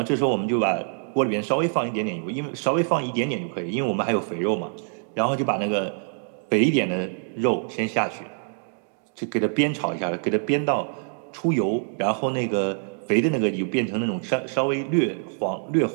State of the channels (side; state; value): left; silent; 62 dB below the other